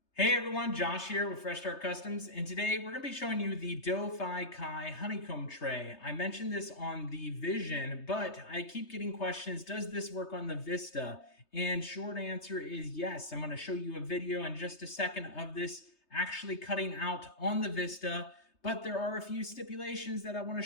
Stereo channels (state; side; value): late; right; 3.3 ms